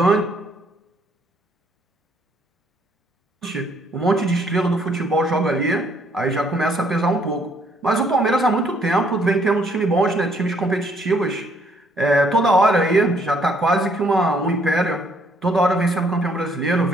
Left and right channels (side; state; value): both; normal; correlation 0.66